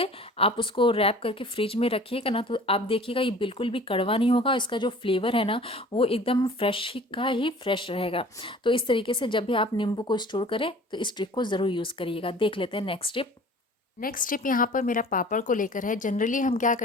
आप उसको रैप करके फ्रिज में रखिएगा ना, तो आप देखिएगा ये बिल्कुल भी कड़वा नहीं होगा। इसका जो फ्लेवर है ना, वो एकदम फ्रेश ही का ही फ्रेश रहेगा। तो इस तरीके से जब भी आप नींबू को स्टोर करें तो इस ट्रिक को ज़रूर यूज़ करिएगा। देख लेते हैं नेक्स्ट टिप। नेक्स्ट टिप यहाँ पर मेरा पापड़ को लेकर है। जनरली हम क्या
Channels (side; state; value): both; normal; correlation 0.46